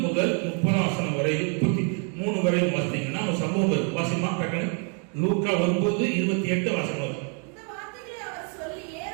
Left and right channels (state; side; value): quieter; left; 39.4 dB